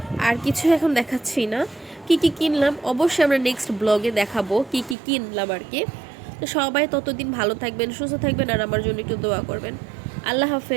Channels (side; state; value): left; drops out; at 5.0 s